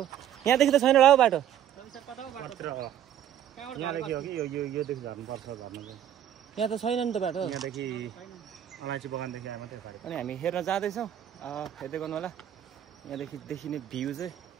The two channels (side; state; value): left; quieter; 10.7 dB